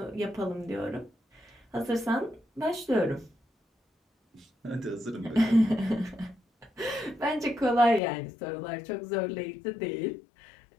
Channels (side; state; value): right; drops out; at 8.0 s